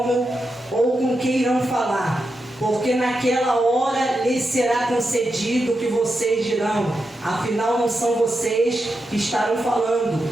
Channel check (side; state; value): both; normal; correlation 0.87